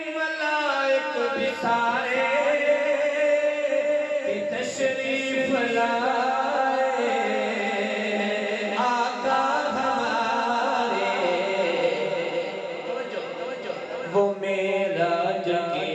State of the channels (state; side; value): identical; both; correlation 1.00